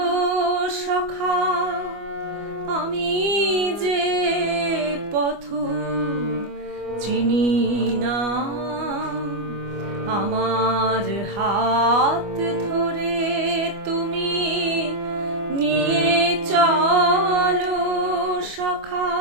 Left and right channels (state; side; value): late; left; 25 ms